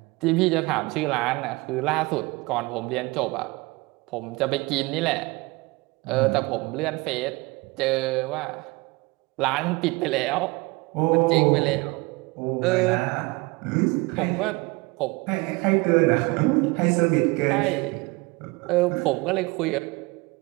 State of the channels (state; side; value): quieter; left; 24.5 dB